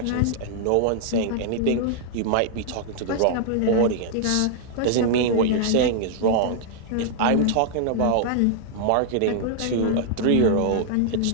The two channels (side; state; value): both; different; correlation -0.01